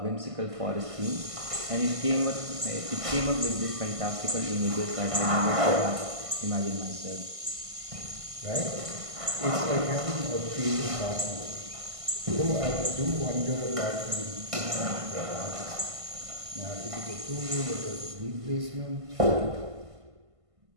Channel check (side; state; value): left; late; 1.5 ms